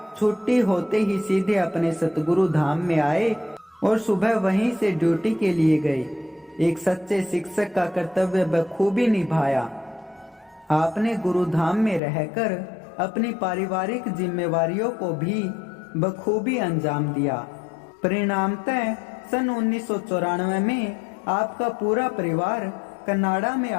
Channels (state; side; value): drops out; right; at 12.0 s